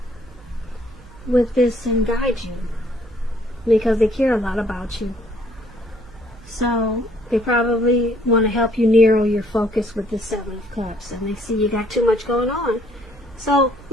with this and guide you, because they care a lot about you. So they probably want to help you narrow your focus with the Seven of Cups, and they see you got too much going on. So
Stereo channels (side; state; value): right; noise; hum, 22 dB below the sound